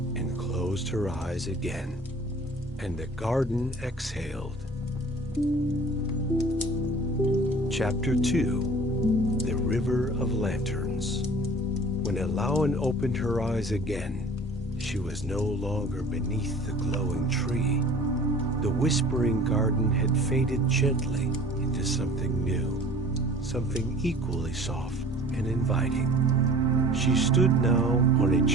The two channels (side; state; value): both; normal; correlation 0.46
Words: closed her eyes again, and the garden exhaled. Chapter 2: The River of Lanterns. When Elowen opened her eyes again, she was no longer beneath the glowing tree. The whispering garden had faded gently into something new, something equally soft and inviting. She stood now on a